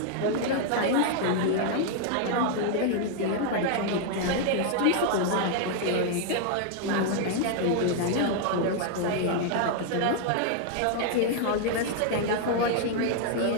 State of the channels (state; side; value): different; both; correlation 0.00